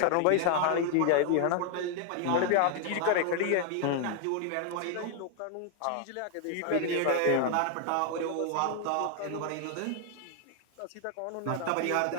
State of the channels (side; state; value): both; different; correlation 0.00